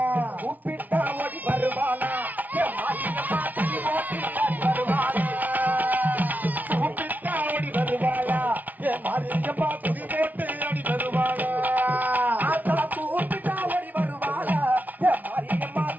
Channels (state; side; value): late; left; 0.079 ms